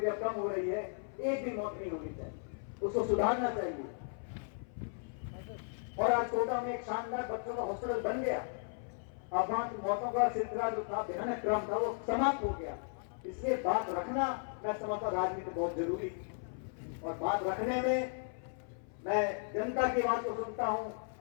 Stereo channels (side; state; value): right; silent; 54 dB below the other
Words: थी, अब कम हो रही है। एक भी मौत नहीं होनी चाहिए, उसको सुधारना चाहिए। और आज कोटा में एक शानदार बच्चों का हॉस्पिटल बन गया। अब वहां की मौतों का सिलसिला जो था, भयानक क्रम था, वो समाप्त हो गया। इसलिए बात रखना, मैं समझता राजनीति बहुत जरूरी है। और बात रखने में मैं जनता की बात को सुनता हूं,